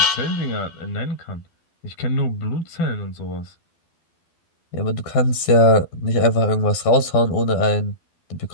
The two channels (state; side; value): late; right; 12 ms